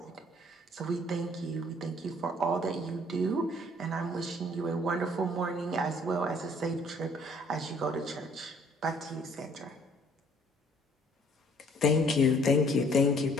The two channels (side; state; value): both; normal; correlation 0.60